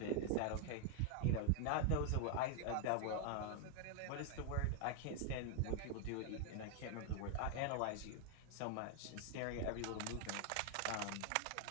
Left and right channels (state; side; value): different; both; correlation 0.00